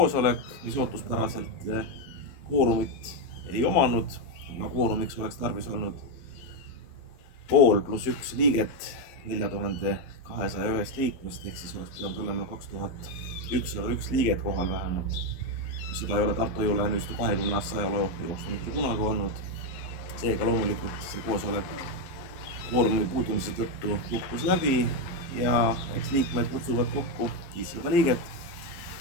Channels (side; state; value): right; late; 11 ms